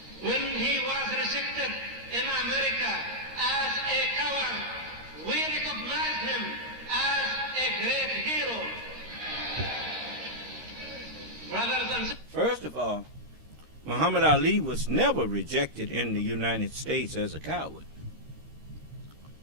When he was rejected in America as a coward, we recognized him as a great hero. Brothers and sisters. First of all, Muhammad Ali was never rejected in the United States as a coward.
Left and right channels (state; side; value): late; left; 13 ms